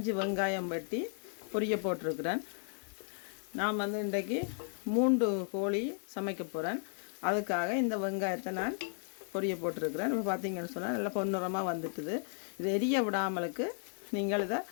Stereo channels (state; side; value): silent; right; 55 dB below the other